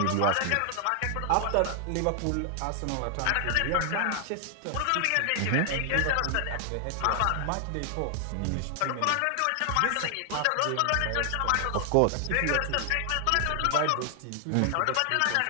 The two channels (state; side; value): different; both; correlation 0.00